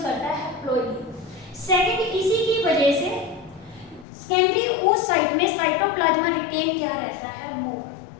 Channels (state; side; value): drops out; right; at 4.0 s